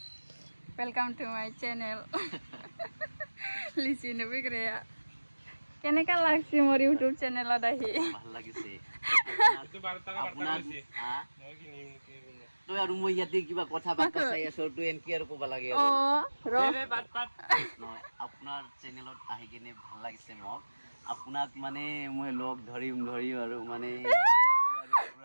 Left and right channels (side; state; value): both; inverted; correlation -1.00